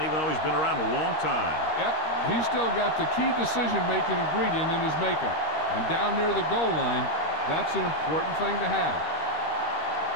even though he's been around a long time. Yep, he's still got the key decision-making ingredient in his makeup. And down near the goal line, that's an important thing to have.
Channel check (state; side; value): late; right; 13 ms